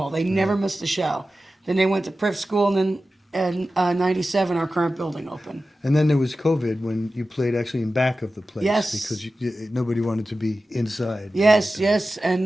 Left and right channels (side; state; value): both; normal; correlation 0.94